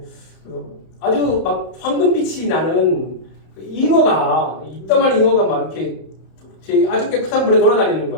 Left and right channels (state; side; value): late; right; 31 ms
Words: 아주 막 황금빛이 나는 이따만한 잉어가 막 이렇게 아주 깨끗한 물에 돌아다니는